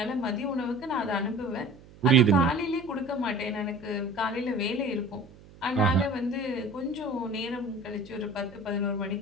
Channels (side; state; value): right; noise; hum, 22 dB below the sound